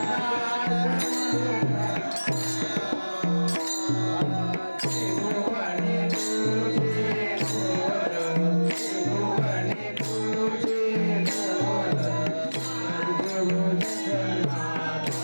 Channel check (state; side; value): inverted; both; correlation -1.00